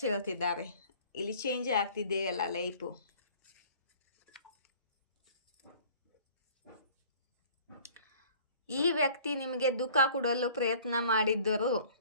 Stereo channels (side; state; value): both; inverted; correlation -0.51